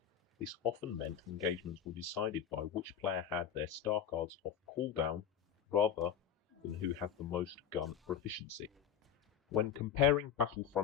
This often meant engagements were decided by which player had their star cards off cooldown rather than who had the most gun proficiency. When comparing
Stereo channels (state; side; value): quieter; right; 8.6 dB